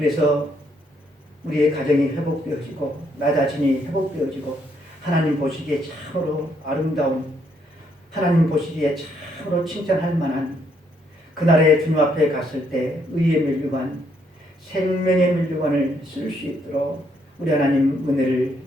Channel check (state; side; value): normal; both; correlation 0.72